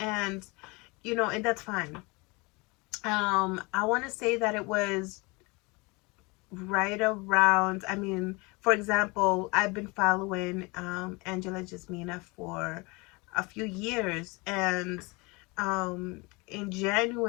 and that's fine. I want to say that it was right around, I mean, for example, I've been following Angela Jasmina for a few years, and um, in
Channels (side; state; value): right; quieter; 26.7 dB